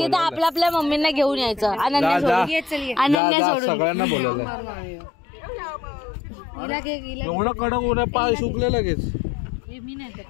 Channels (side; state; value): right; drops out; at 3.2 s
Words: आपल्या आपल्या मम्मींना घेऊन यायचं. अनन्या सोडून सगळ्यांना बोलावलं. एवढं कडक ऊन आहे, पाय सुकले लगेच.